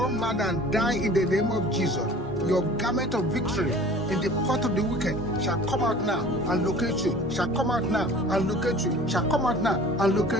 mad and die in the name of Jesus. Your garment of victory in the pot of the wicked shall come out now and locate you, shall come out now and locate you, shall come out now and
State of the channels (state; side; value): normal; both; correlation 0.45